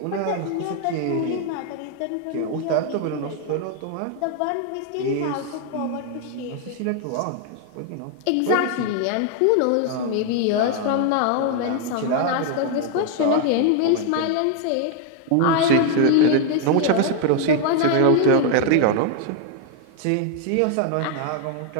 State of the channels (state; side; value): different; both; correlation 0.00